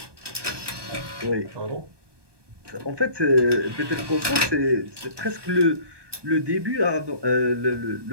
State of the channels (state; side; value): late; left; 1.2 ms